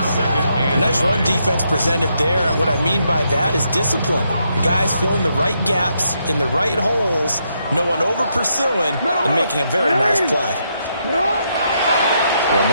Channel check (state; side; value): inverted; both; correlation -0.78